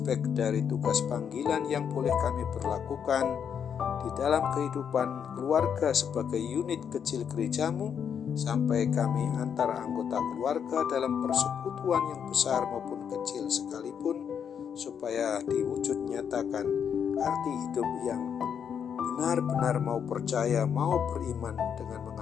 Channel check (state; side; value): quieter; right; 7.7 dB